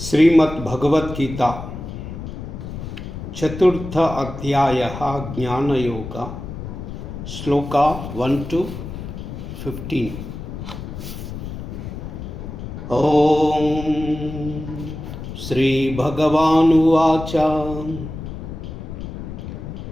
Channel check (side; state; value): left; noise; rumble, 9 dB below the sound